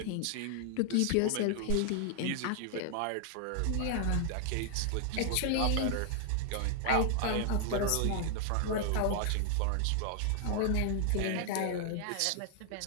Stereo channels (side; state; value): both; different; correlation 0.00